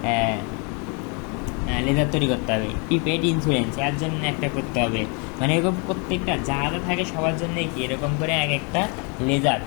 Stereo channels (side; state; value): right; quieter; 34.2 dB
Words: লেজার তৈরি করতে হবে। প্রিপেড ইন্স্যুরেন্স, এর জন্য একটা করতে হবে। মানে এরকম প্রত্যেকটা যা যা থাকে সবার জন্য কি এরকম করে এক একটা লেজার